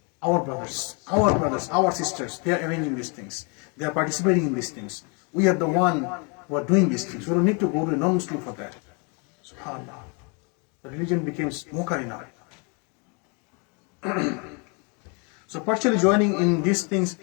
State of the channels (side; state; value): right; quieter; 34.3 dB